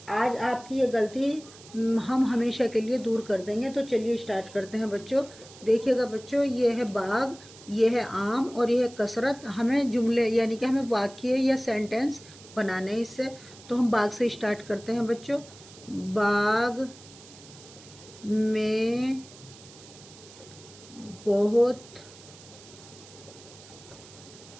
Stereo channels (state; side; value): noise; right; hiss, 20 dB below the sound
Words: आज आपकी ये गलती हम हमेशा के लिए दूर कर देंगे। तो चलिए स्टार्ट करते हैं बच्चों। देखिएगा बच्चों, ये है बाग, ये है आम और ये है कसरत। हमें जुमले यानी कि हमें वाक्य या सेंटेंस बनाने हैं इससे। तो हम बाग से स्टार्ट करते हैं बच्चों। बाग में बहुत